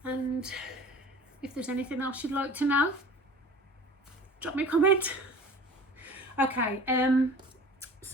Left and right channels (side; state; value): both; normal; correlation 0.43